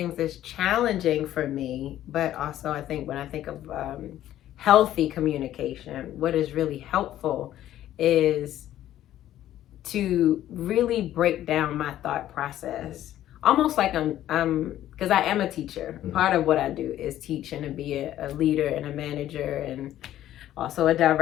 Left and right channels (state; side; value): quieter; right; 12.7 dB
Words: that's challenging for me, but also I think when I think of healthy communication, what is really helpful is to really break down my thought process. Almost like I'm because I am a teacher. Part of what I do is teach and to be a leader and a manager and also a